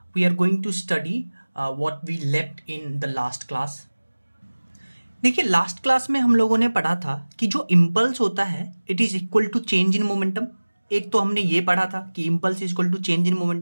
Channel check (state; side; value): inverted; both; correlation -1.00